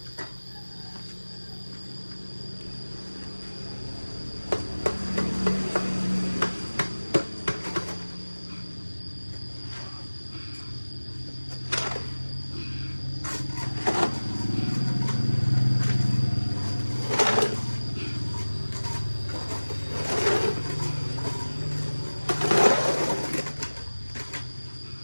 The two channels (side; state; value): both; inverted; correlation -1.00